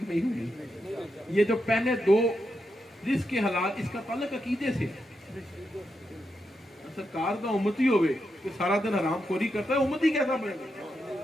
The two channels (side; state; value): both; normal; correlation 0.85